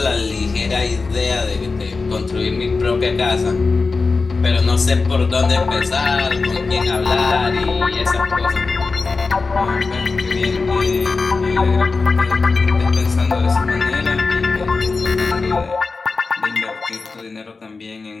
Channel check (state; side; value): quieter; right; 4.1 dB